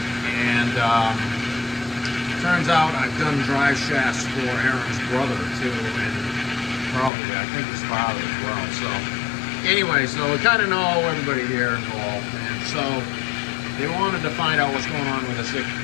And turns out I've done drive shafts for Aaron's brother too, and probably I think his father as well. So anyway, so we kind of know everybody here involved, and so they wanted to find out what's going on with this.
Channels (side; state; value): right; drops out; at 7.1 s